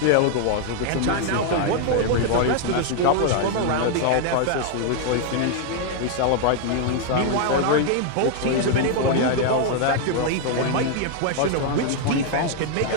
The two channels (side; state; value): both; different; correlation 0.00